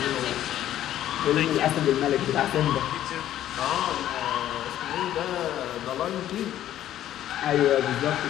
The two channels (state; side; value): quieter; right; 12.2 dB